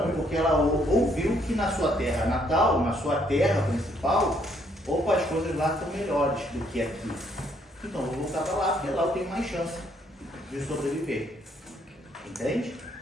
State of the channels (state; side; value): normal; both; correlation 0.69